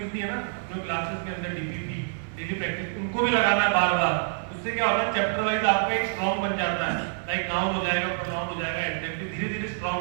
है ना, जो क्लासेस के अंदर डीपीपी डेली प्रैक्टिस, उनको भी लगाना है बार बार। उससे क्या होता है, चैप्टर वाइज आपका एक स्ट्रॉन्ग बन जाता है, लाइक नाउन हो जाएगा, प्रोनाउन हो जाएगा, एडजेक्टिव धीरे धीरे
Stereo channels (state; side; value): silent; left; digital silence